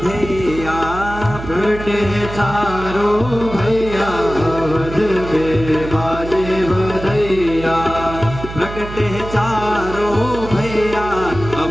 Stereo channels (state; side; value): noise; right; hum, 10 dB below the sound